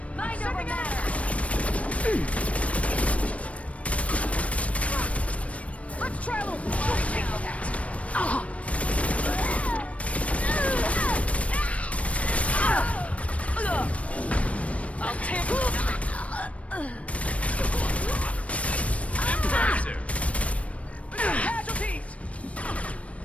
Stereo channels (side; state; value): right; late; 0.064 ms